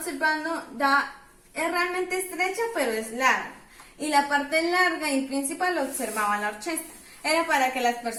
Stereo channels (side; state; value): both; identical; correlation 1.00